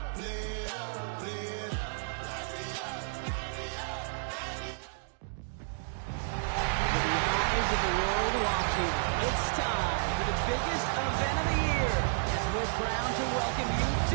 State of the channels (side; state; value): left; silent; digital silence